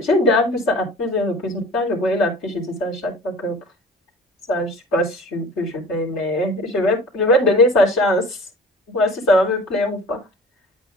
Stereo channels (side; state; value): both; normal; correlation 0.42